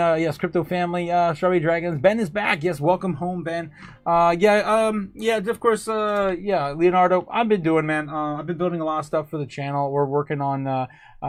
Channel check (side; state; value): both; identical; correlation 1.00